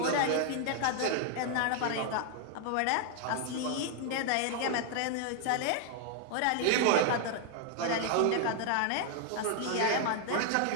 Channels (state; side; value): different; both; correlation 0.00